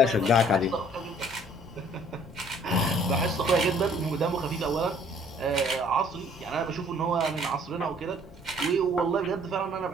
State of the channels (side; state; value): both; normal; correlation 0.57